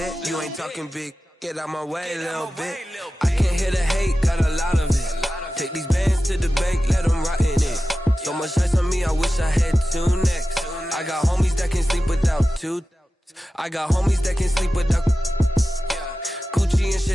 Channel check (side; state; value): both; normal; correlation 0.94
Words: You ain't talking big. Get out my way, little bit. I can't hear the hate, got a lot of it. Take these bands to the bank, let them rot in it. So much ice on me, I wish I had 2 necks. I got homies that can sleep without 2. I got homies that can sleep without Gucci and